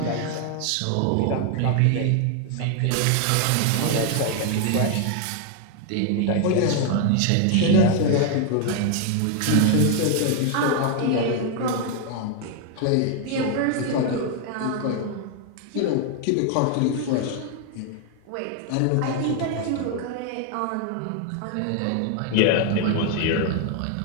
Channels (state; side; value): different; both; correlation 0.00